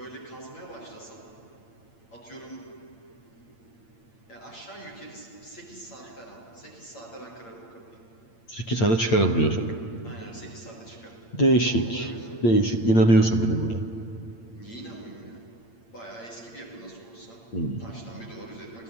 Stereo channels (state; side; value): late; right; 8.8 ms